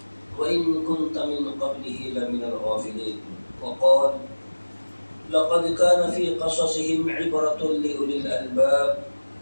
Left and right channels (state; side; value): inverted; both; correlation -1.00